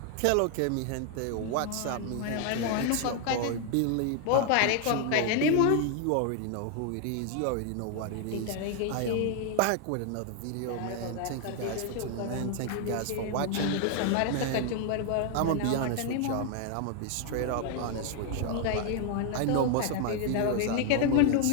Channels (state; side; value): different; both; correlation 0.00